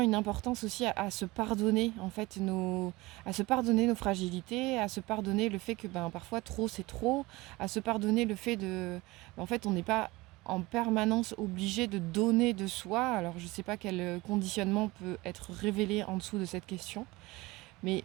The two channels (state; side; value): quieter; left; 21.4 dB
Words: importance aussi à se pardonner en fait à se pardonner nos fragilités, à se pardonner le fait que parfois trop c'est trop, à se pardonner le fait en fait on n'est pas en permanence obligé de donner de soi. Alors je ne sais pas quel conditionnement peut être révélé en dessous de cette question, mais